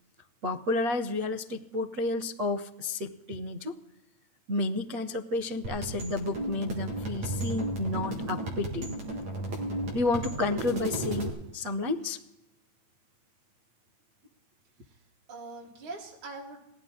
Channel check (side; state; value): left; late; 8.4 ms